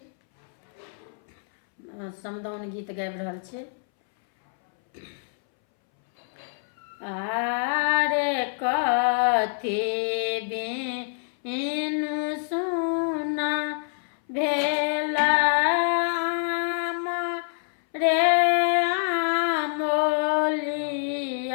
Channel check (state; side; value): silent; right; 61 dB below the other